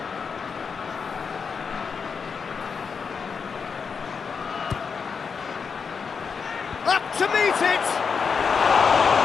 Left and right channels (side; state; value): right; quieter; 5.8 dB